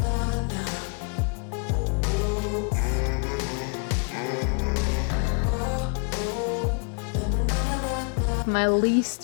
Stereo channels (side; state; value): right; quieter; 39.1 dB